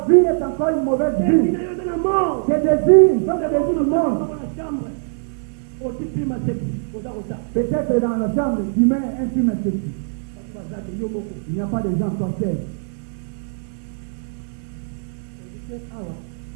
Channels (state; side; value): silent; left; digital silence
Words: vie est encore une mauvaise vie. Tes désirs sont des désirs du monde. Peut-être dans la chambre, tu mets un film esthétique. Il n'y a pas de gens sorciers.